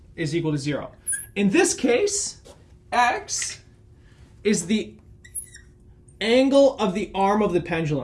is equal to 0. In this case, x is the angle of the arm of the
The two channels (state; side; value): identical; both; correlation 1.00